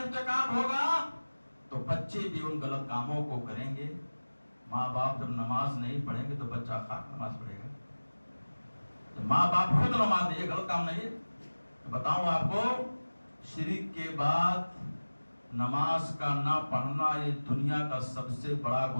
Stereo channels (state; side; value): inverted; both; correlation -1.00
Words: ہوگا تو بچے بھی ان غلط کاموں کو کریں گے۔ ماں باپ جب نماز نہیں پڑھیں گے تو بچہ خاک نماز پڑھے گا۔ جب ماں باپ خود نماز نہیں، یہ غلط کام نہیں ہے۔ بتاؤں آپ کو، شرک کے بعد نماز کا نہ پڑھنا یہ دنیا کا سب سے بڑا